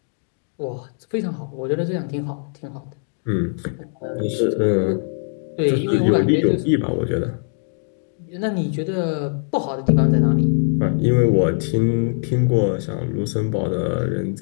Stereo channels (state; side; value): silent; right; 65 dB below the other